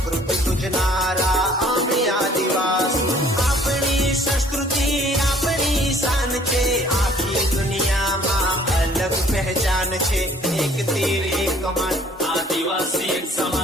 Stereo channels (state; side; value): normal; both; correlation 0.56